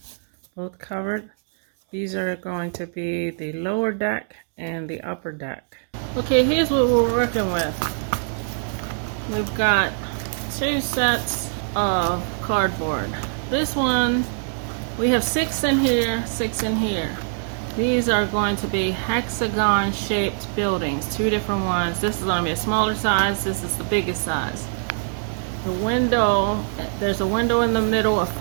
both covered. These are going to be the lower deck and the upper deck. Okay, here's what we're working with. We've got two sets of cardboard. This one, we have 6 in here, 6 in here. These are going to be hexagon shaped buildings, two different ones. This is going to be a smaller size, this is the biggest size. The window, there's a window in the middle of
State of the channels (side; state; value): left; silent; digital silence